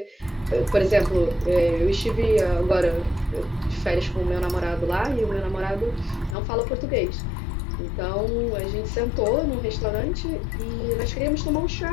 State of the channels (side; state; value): right; drops out; at 6.4 s